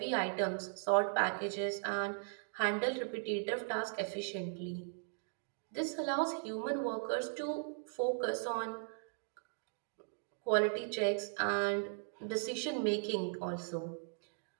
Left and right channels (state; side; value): silent; left; digital silence